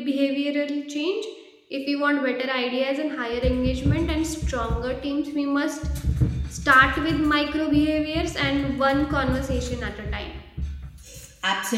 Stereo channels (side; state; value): both; identical; correlation 1.00